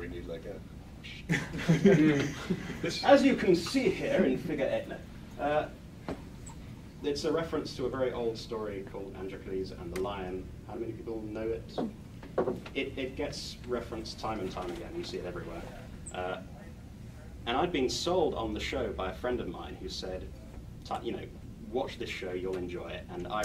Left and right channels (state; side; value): identical; both; correlation 1.00